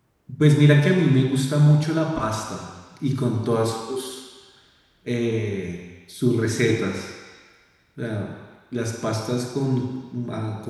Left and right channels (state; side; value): identical; both; correlation 1.00